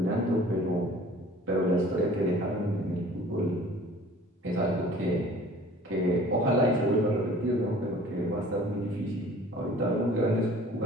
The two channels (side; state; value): both; normal; correlation 0.48